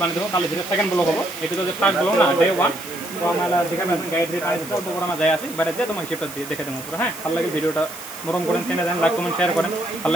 বানিয়ে দেবো কালি যেটা সেকেন্ড ব্লগ হবো এটা তো যে ফার্স্ট ব্লগ না ডে 1 তো আমরা দেখাবেন গাইড পানি অল্প করে আমরা যাই আসি বাইরে যেয়ে তোমার হিসেবটা দিয়ে দেখে দেবো পুরো হ্যাঁ ভালো লাগে ভিডিওটা মরম করেন চ্যানেল দেন লাইক কমেন্ট শেয়ার করেন ভালো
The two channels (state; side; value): noise; right; hiss, 14 dB below the sound